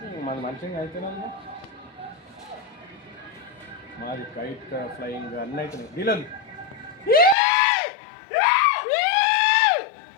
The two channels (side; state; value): right; drops out; at 7.4 s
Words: మాది కైట్ ఫ్లయింగ్ అన్నీ అవుతున్నాయి. డీలర్